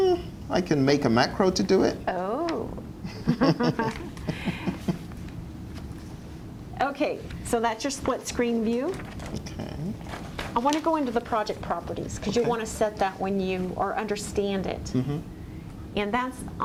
I can make a macro to do it. Oh. Okay, so that's your split screen view. Okay. I want to go into the project properties because you want to set that when you or understand it. And that's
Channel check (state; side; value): identical; both; correlation 1.00